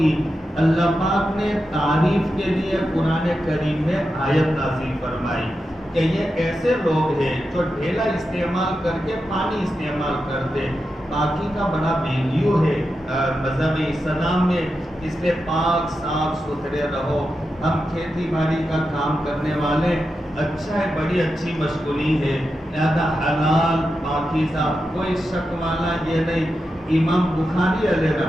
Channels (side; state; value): both; normal; correlation 0.89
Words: اللہ پاک نے تعریف کے لیے قرآن کریم میں آیت نازل فرمائی کہ یہ ایسے لوگ ہیں جو ڈھیلا استعمال کر کے پانی استعمال کرتے. پاکی کا بڑا ویلیو ہے مذہب اسلام میں، اس لیے پاک صاف ستھرے رہو. ہم کھیتی باڑی کا کام کرنے والے، اچھا ہے، بڑی اچھی مشغولی ہے، لہذا حلال پاکیزہ، کوئی شک والا یہ نہیں. امام بخاری علیہ